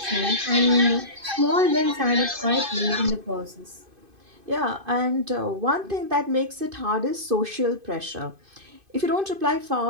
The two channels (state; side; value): late; left; 2.5 ms